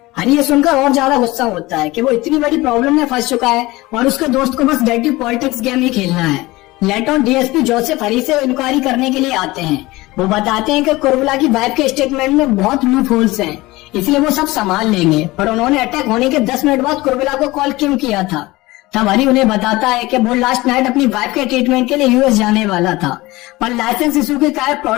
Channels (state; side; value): quieter; right; 20.1 dB